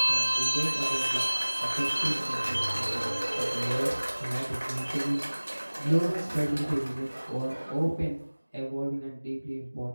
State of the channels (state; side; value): inverted; both; correlation -1.00